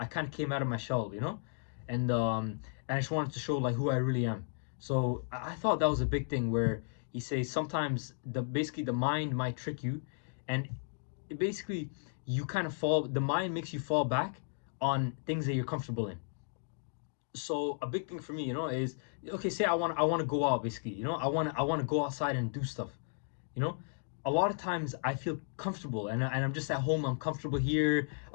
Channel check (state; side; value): silent; right; digital silence